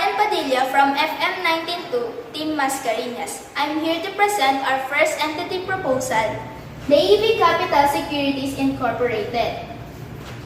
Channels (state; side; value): identical; both; correlation 1.00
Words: Padilla from FM 192, Team Mascariñas. I'm here to present our first entity proposal, the AV Capital Securities Incorporated.